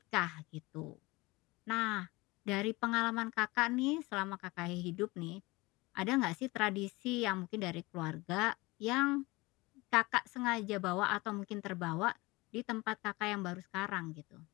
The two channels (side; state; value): right; quieter; 22.6 dB